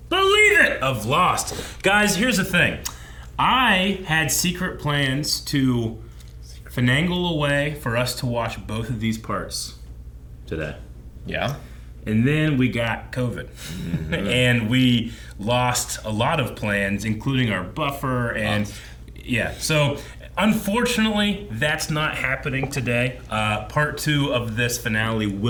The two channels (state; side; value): identical; both; correlation 1.00